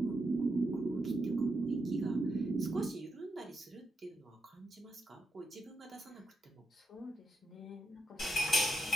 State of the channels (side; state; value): both; normal; correlation 0.84